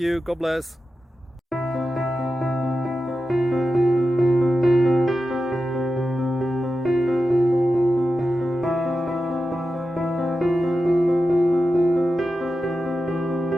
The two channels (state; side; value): normal; both; correlation 0.91